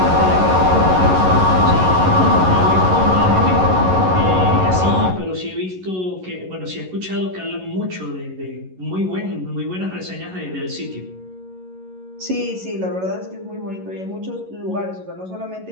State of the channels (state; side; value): late; left; 11 ms